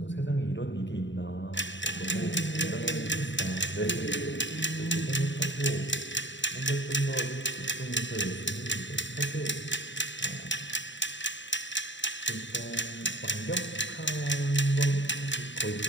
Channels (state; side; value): late; right; 0.54 ms